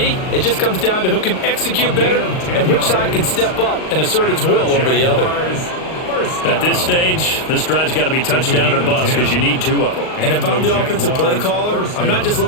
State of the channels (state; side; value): late; right; 38 ms